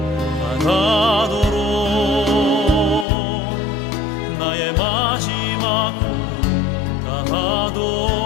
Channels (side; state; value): right; drops out; at 3.1 s